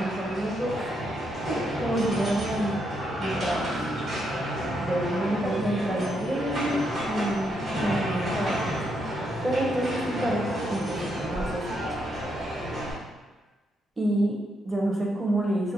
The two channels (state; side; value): normal; both; correlation 0.78